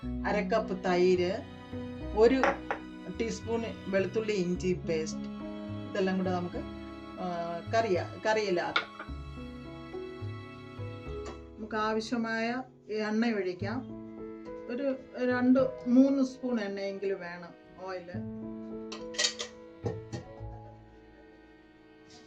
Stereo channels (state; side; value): identical; both; correlation 1.00